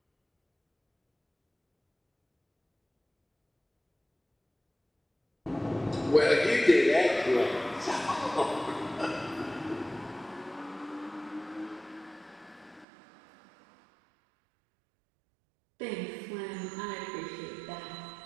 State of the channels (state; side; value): drops out; left; at 12.9 s